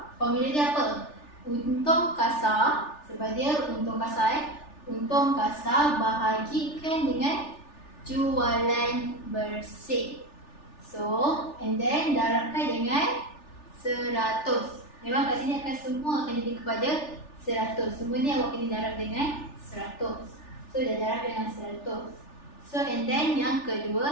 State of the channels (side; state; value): right; late; 3.4 ms